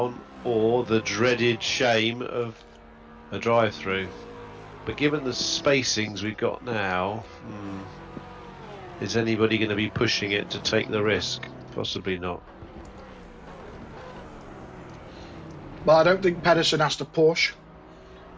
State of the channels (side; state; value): both; identical; correlation 1.00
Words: or the dreaded shame of a drive-through. But given the spacings we've got now, is anybody going to be pushing it to take the risk? Possibly not. Well, I don't think Pedersen has to push,